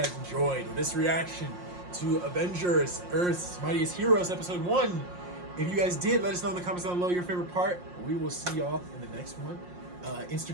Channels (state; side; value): late; left; 5.6 ms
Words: enjoyed this reaction to Avengers Earth's Mightiest Heroes Episode 1. If you guys did, let us know in the comments down below your favorite part. We will see y'all in the next one.